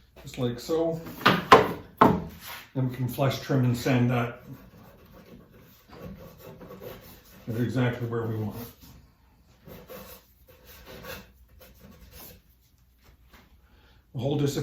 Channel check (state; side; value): identical; both; correlation 1.00